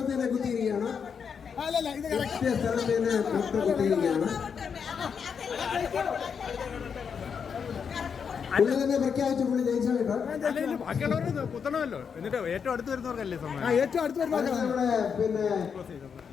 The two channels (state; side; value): quieter; right; 6.6 dB